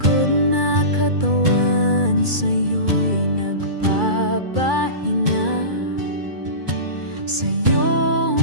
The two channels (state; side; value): late; left; 2.3 ms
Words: na katawan sa'yo'y nagpapahinga. Sa iyong